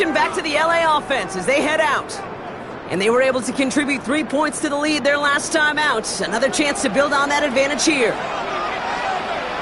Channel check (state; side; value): identical; both; correlation 1.00